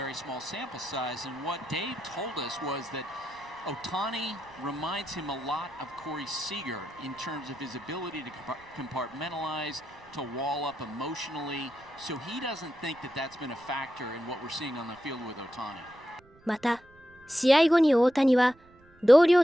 small sample size. And what Dave told us was that Otani reminds him a lot of Corey Seager in terms of his ability to compartmentalize, to wall up emotionally. So he doesn't think that that's been a factor in what we're seeing on the field with Otani. また、試合後に大谷は同僚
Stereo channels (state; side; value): noise; right; rumble, 28 dB below the sound